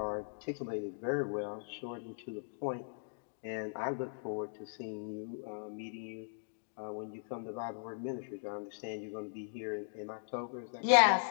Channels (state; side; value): silent; right; digital silence